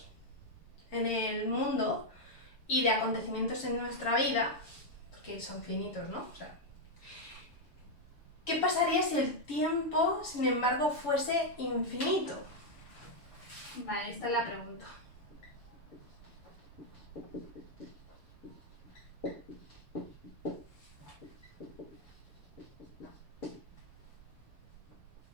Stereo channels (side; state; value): right; late; 7.0 ms